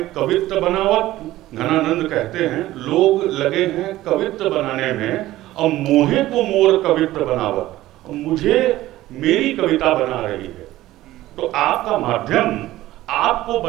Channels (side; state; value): left; quieter; 15.8 dB